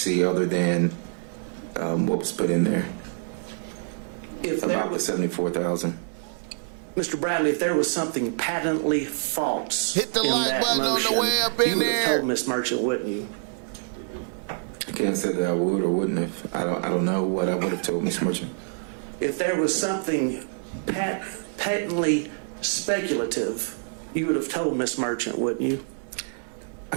other than what was put in there about the $74,000. Mr. Bradley, if there was something patently false Hit the in like that button on the motion, way up in you would have there. told Miss Merchant, wouldn't you? I can't say that I would or wouldn't have. I don't know what I would have told Miss Merchant. If there was something patently speculative, you would have told Miss Merchant, wouldn't you? I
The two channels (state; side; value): silent; left; 61 dB below the other